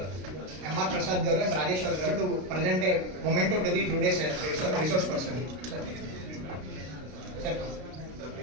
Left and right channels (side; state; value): left; late; 33 ms